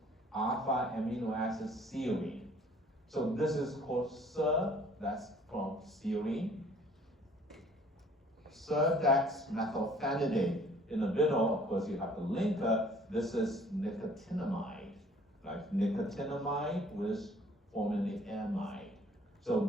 alpha amino acid serine. So this is called SER, that's from serine. Dexmethylphenidate. In the middle, of course, you have the linker. This is nicotinamide, right? Nicotinamide with forming the amide. So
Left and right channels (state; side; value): normal; both; correlation 0.55